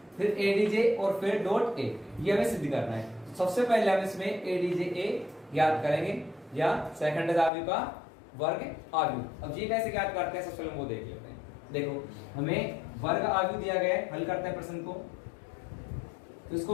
फिर ए डीजे और फिर डॉट ए, ये हमें सिद्ध करना है। सबसे पहले हम इसमें ए डीजे ए ज्ञात करेंगे या सैखंडज आव्यूह का वर्ग आव्यूह। अब ये कैसे ज्ञात करते हैं, सबसे पहले वो देख लेते हैं। देखो, हमें वर्ग आव्यूह दिया गया है, हल करते हैं प्रश्न को। तो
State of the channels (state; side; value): drops out; right; at 7.5 s